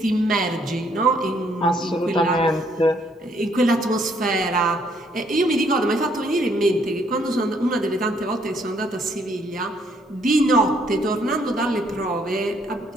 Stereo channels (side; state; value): both; normal; correlation 0.68